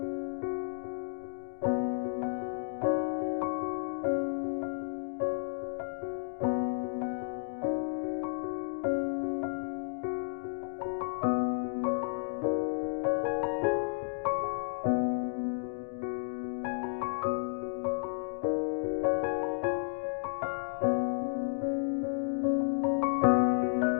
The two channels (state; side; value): silent; right; digital silence